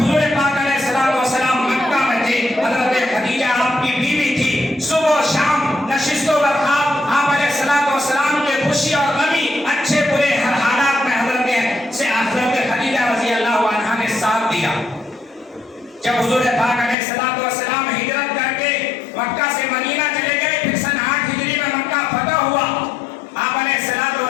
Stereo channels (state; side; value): drops out; right; at 16.9 s